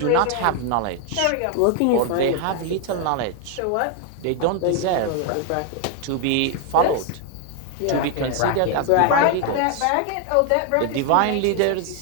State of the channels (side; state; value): both; different; correlation 0.01